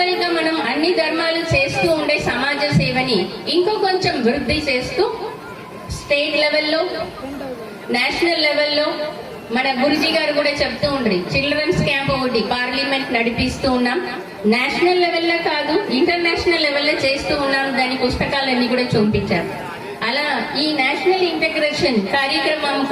గా మనం అన్ని ధర్మాలు చేస్తూ ఉండే సమాజ సేవని ఇంకో కొంచెం వృద్ధి చేస్తూ స్టేట్ లెవెల్లో, నేషనల్ లెవెల్లో మన గురుజీ గారు కూడా చెప్తూ ఉండ్రి, చిల్డ్రన్స్ క్యాంప్ ఒకటి పార్లమెంట్ నడిపిస్తూ ఉన్నాం. నేషనల్ లెవెల్లో కాదు, ఇంటర్నేషనల్ లెవెల్లో చేస్తూ ఉన్నాం. దాని పుస్తకాలన్నీ కూడా చూపించారు. అలా ఈ నేషనల్ ఇంటిగ్రేషన్ కార్యక్రమం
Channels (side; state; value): both; identical; correlation 1.00